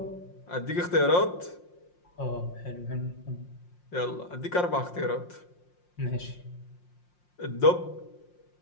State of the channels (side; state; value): right; late; 5.6 ms